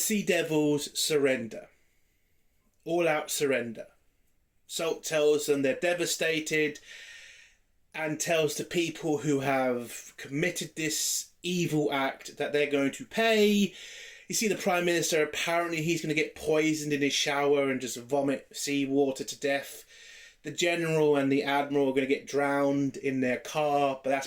Devils surrender. All out surrender. Salt tells them they're devastated, and tells the people who have committed this evil act that they're going to pay. You see the Prime Minister, apparently he's going to get poisoned in his shower and just vomit seawater to death. The General and the Admiral are going to get drowned in their car, but that's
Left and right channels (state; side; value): identical; both; correlation 1.00